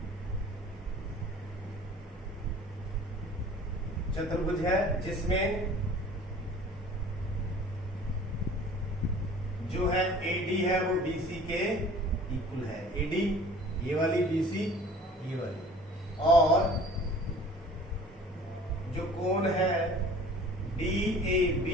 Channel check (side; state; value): both; normal; correlation 0.48